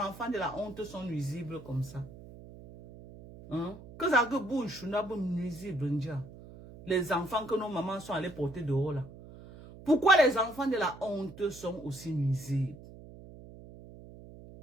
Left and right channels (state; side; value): noise; right; hum, 17 dB below the sound